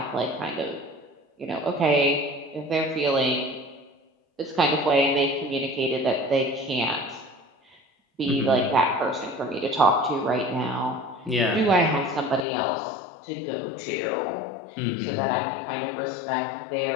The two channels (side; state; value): right; drops out; at 12.5 s